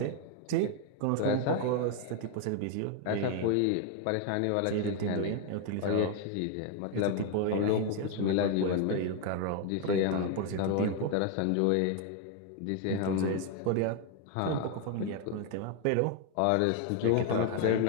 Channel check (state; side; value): different; both; correlation 0.01